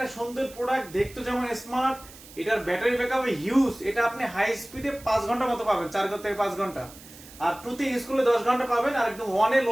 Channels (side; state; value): right; noise; hiss, 19 dB below the sound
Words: সুন্দর প্রোডাক্ট, দেখতে যেমন স্মার্ট, এটার ব্যাটারি ব্যাকআপ হিউজ। এটা আপনি হাই স্পিডে 5 ঘন্টা মতো পাবেন, 4 থেকে 5 ঘন্টা, আর টুতে ইউজ করলে 10 ঘন্টা পাবেন, আর একদম ওয়ানে